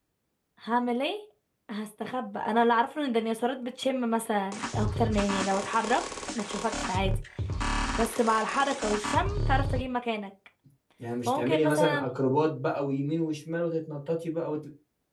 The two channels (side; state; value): both; identical; correlation 1.00